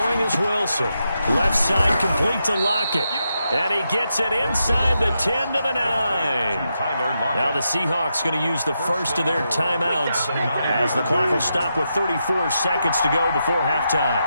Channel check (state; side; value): inverted; both; correlation -0.85